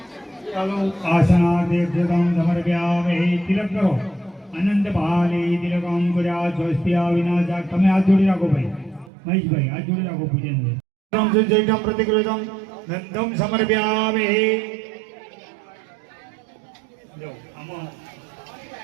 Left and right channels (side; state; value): left; drops out; at 9.1 s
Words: ચાલો આસનાદેક્ષતમ સમર્પ્યામે. તિલક કરો. અનંત પાલે તિલકમ કર્યા સ્વસ્ત્યા વિનાશા. તમે હાથ જોડી રાખો ભાઈ મહેશભાઈ, હાથ જોડી રાખો પૂજન. સંજયમ પ્રતિકૃતમ નંદમ સમર્પ્યામે. જો આમાં